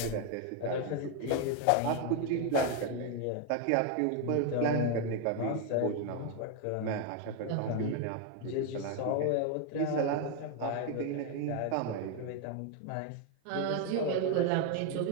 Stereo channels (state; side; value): different; both; correlation 0.01